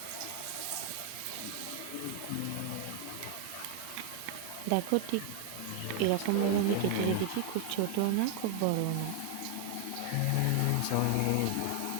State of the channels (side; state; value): both; different; correlation 0.00